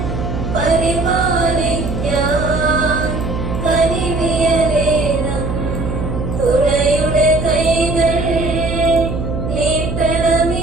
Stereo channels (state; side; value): noise; right; hum, 4 dB below the sound